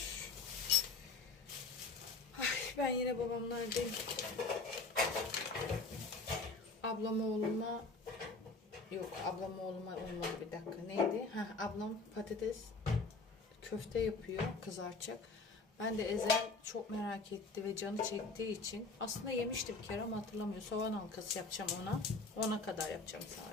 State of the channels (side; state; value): right; quieter; 3.8 dB